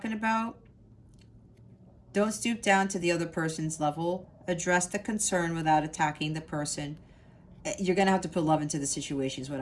about? Don't stoop down to the other person's level. Address the concern without attacking the person. You're going to have to put love into the situation is what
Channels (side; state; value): both; identical; correlation 1.00